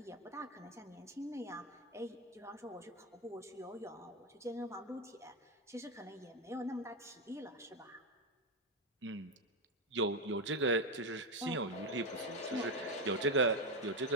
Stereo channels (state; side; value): normal; both; correlation 0.08